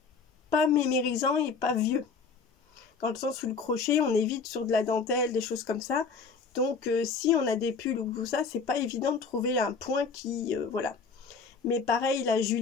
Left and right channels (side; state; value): right; quieter; 5.0 dB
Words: pas mémérisants et pas vieux. Dans le sens où le crochet, on évite sur de la dentelle, des choses comme ça. Donc si on a des pulls ou tout ça, c'est pas évident de trouver un point qui... voilà. Mais pareil, la